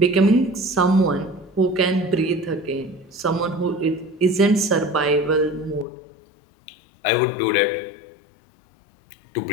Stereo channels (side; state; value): right; drops out; at 5.9 s